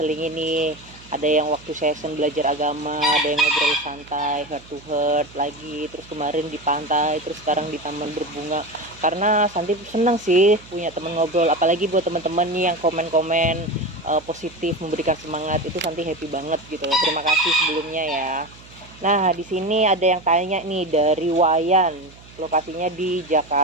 ini. Ada yang waktu session belajar agama, ada yang ngobrol santai, heart to heart lagi. Terus kemarin di pantai, terus sekarang di taman berbunga. Karena Santi senang sih punya teman ngobrol, apalagi buat teman-teman nih yang komen-komen positif, memberikan semangat, itu Santi happy banget gitu. Terima kasih sebelumnya ya. Nah, di sini ada yang tanya nih dari Wayan, lokasinya di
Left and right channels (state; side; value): noise; right; hum, 22 dB below the sound